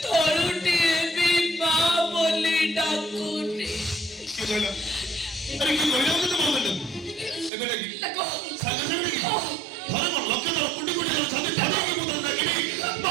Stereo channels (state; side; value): drops out; left; at 7.5 s